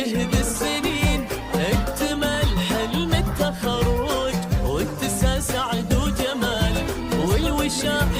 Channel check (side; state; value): both; identical; correlation 1.00